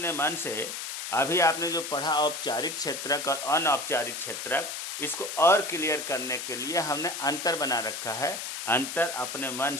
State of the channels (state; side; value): noise; left; hiss, 6 dB below the sound